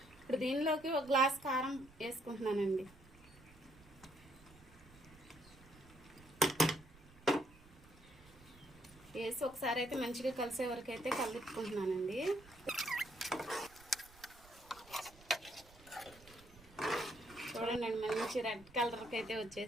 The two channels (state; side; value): noise; right; rumble, 23 dB below the sound